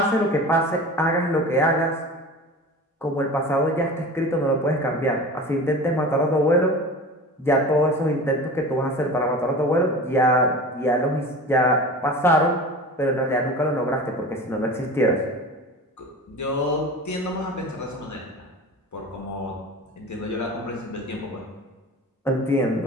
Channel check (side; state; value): both; normal; correlation 0.35